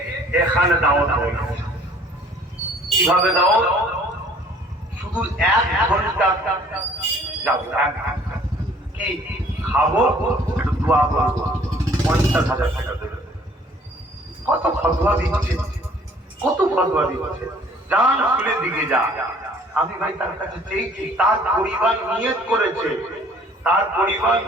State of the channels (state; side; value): normal; both; correlation 0.56